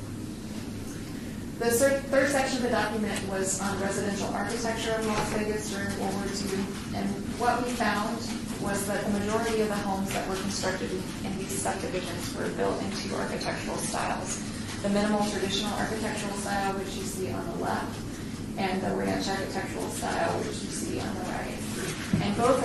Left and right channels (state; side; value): identical; both; correlation 1.00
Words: The third section of the document was on residential architecture of Las Vegas during World War II. And what we found was that the majority of the homes that were constructed in these subdivisions were built in two architectural styles. the minimal traditional architectural style, which you see on the left, and the ranch architectural style, which you see on the right. And both